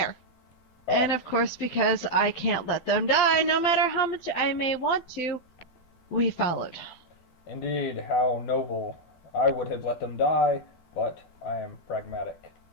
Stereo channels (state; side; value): late; right; 11 ms